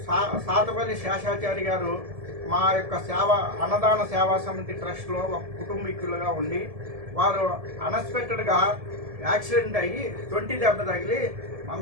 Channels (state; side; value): late; left; 1.7 ms